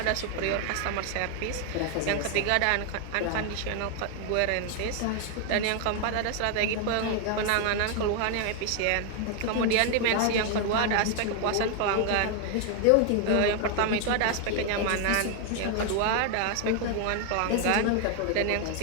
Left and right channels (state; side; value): different; both; correlation 0.00